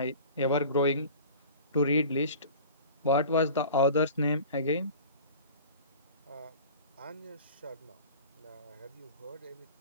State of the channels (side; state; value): both; inverted; correlation -0.40